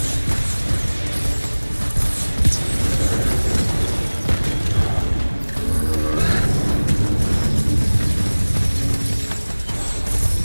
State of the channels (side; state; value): both; inverted; correlation -1.00